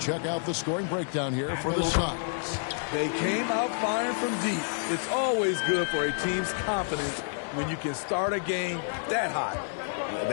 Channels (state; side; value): silent; right; digital silence